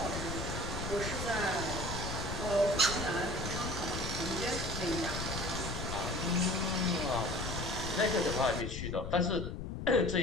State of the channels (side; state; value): left; noise; rumble, 5 dB below the sound